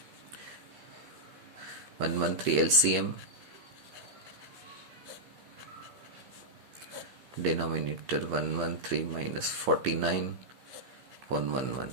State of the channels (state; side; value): late; left; 15 ms